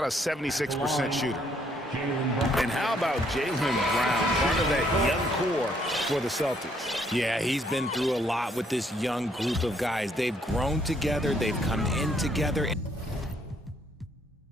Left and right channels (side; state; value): both; normal; correlation 0.69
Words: a 76% shooter. And how about Jaylen Brown, part of that young core for the Celtics? Yeah, he's been through a lot with this young group of guys. They've grown together. They've come in together.